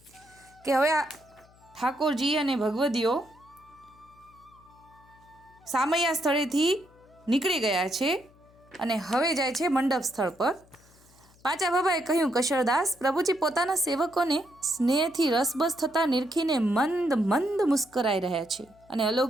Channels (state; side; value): noise; left; hum, 28 dB below the sound